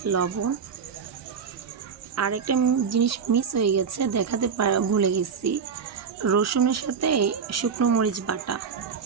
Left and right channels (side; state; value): left; quieter; 6.3 dB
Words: লবণ। আর একটা জিনিস মিস হয়ে গেছে, দেখাতে ভুলে গেছি, রসুনের সাথে শুকনো মরিচ বাটা।